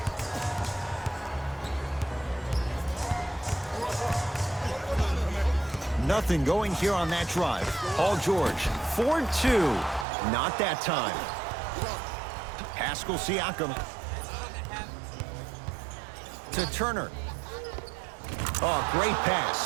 Nothing going here on that drive. Paul George, 4-2. Not that time. Pascal Siakam. To Turner. Oh, great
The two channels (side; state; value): left; drops out; at 10.1 s